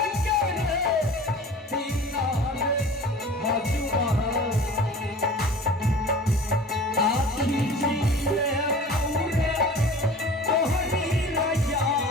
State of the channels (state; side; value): normal; both; correlation 0.41